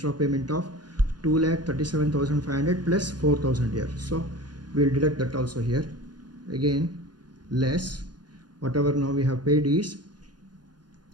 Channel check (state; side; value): late; left; 0.70 ms